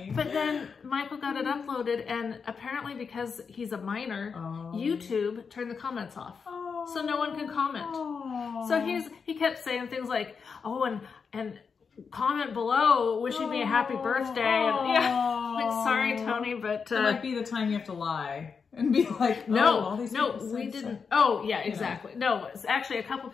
But then Michael got it uploaded, and apparently because he's a minor, YouTube turned the comments off. So no one can comment. So he kept saying things like, and comment below wishing me a happy birthday. And sorry, Tony, but it might be the time you have to lie and be like, no, we didn't. Oh, yeah, exactly. No, it's actually a couple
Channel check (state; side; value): quieter; right; 5.7 dB